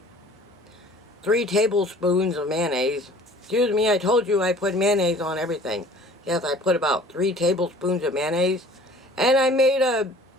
3 tablespoons of mayonnaise. Excuse me, I told you I put mayonnaise on everything. Yes, I put about 3 tablespoons of mayonnaise, and I made a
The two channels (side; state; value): both; normal; correlation 0.49